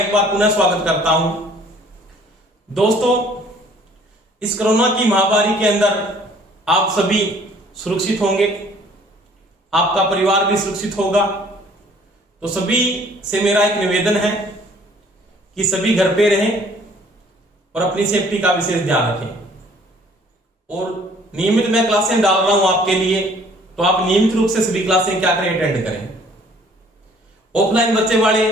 बार पुनः स्वागत करता हूं। दोस्तों, इस कोरोना की महामारी के अंदर आप सभी सुरक्षित होंगे, आपका परिवार भी सुरक्षित होगा। तो सभी से मेरा एक निवेदन है कि सभी घर पे रहें और अपनी सेफ्टी का विशेष ध्यान रखें। और नियमित मैं क्लासें डाल रहा हूं आपके लिए, तो आप नियमित रूप से सभी क्लासें क्या करें, अटेंड करें। ऑफलाइन बच्चे वाले,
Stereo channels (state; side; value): normal; both; correlation 0.56